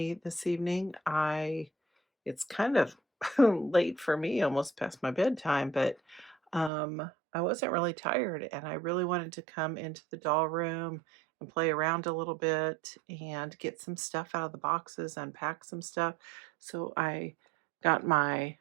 this evening. It's kind of late for me, almost past my bedtime, but I wasn't really tired, and I really wanted to come into the doll room and play around a little bit and get some stuff out of the boxes, unpack some stuff. So I got my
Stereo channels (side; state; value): left; drops out; at 6.7 s